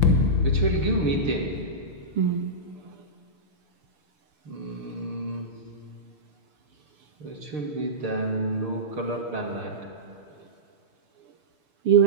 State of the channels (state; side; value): late; left; 6.6 ms